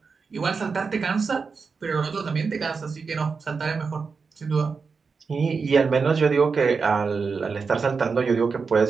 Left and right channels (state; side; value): quieter; left; 5.1 dB